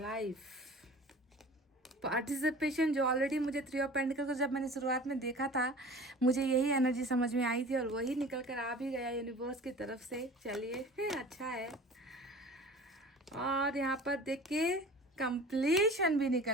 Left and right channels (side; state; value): both; normal; correlation 0.41